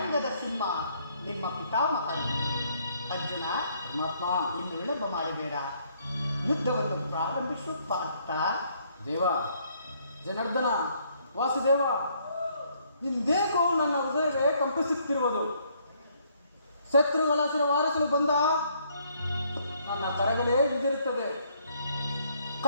ಸಿಂಹ ನಿಮ್ಮ ಪಿತಾಮಹ. ಅರ್ಜುನ, ಪರಮಾತ್ಮ, ಇನ್ನು ವಿಳಂಬ ಮಾಡಬೇಡ, ಯುದ್ಧವನ್ನು ಪ್ರಾರಂಭಿಸುವ ಪಾರ್ಥ. ದೇವ, ಜನಾರ್ದನ, ವಾಸುದೇವ, ಇಂದೇಕೋ ನನ್ನ ಹೃದಯವೇ ಕಂಪಿಸುತ್ತಿರುವುದು. ಶತ್ರುಗಳ ವಾರಿಸಲು ಬಂದ ನನ್ನ ಕರಗಳೇ ಹಿಂದಿರುತ್ತದೆ.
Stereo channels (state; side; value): inverted; both; correlation -0.68